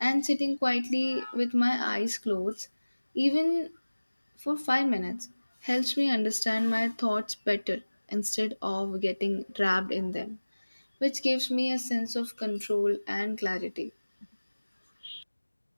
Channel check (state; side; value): inverted; both; correlation -1.00